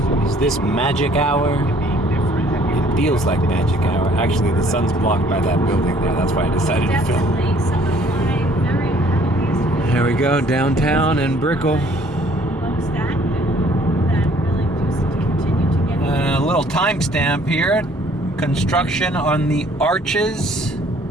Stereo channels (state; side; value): normal; both; correlation 0.59